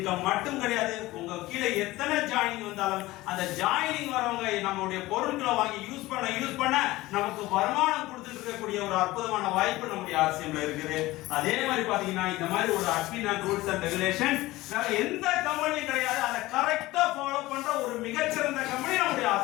மட்டும் கிடையாது. உங்க கீழே எத்தனை ஜாயினிங் வந்தாலும் அந்த ஜாயினிங் வரவங்க நம்மளுடைய பொருட்களை வாங்கி யூஸ் பண்ண நமக்கு வருமானம் கொடுத்துட்டு இருக்கக்கூடிய ஒரு அற்புதமான வாய்ப்பு நம்முடைய ஆர்சிஎம்ல இருக்குது. அதே மாதிரி பாத்தீங்கன்னா இந்த மாதிரி ஒரு admin and rules and regulations எந்த கம்பெனியும் கிடையாது. அதை கரெக்டா ஃபாலோ பண்ற ஒரு மிகச்சிறந்த கம்பெனி நம்முடைய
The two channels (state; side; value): quieter; right; 18.4 dB